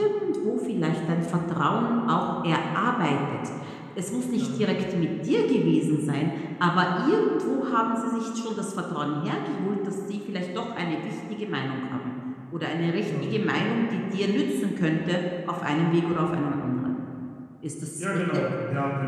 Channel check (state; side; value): identical; both; correlation 1.00